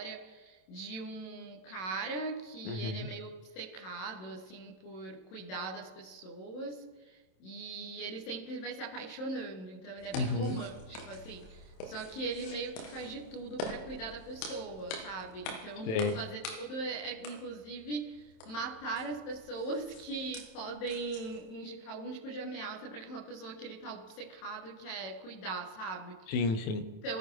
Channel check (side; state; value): right; late; 27 ms